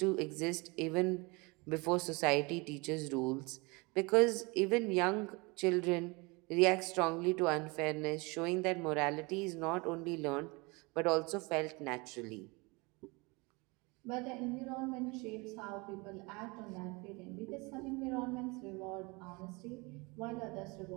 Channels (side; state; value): left; quieter; 26.9 dB